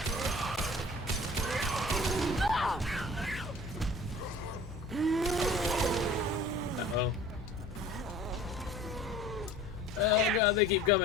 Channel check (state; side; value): normal; both; correlation 0.46